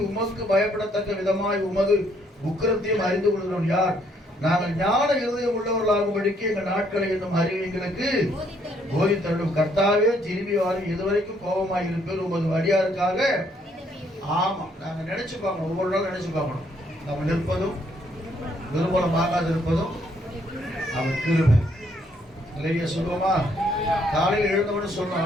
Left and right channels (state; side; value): normal; both; correlation 0.69